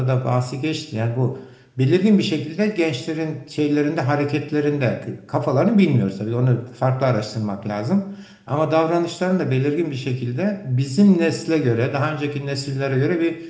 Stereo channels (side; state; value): both; identical; correlation 1.00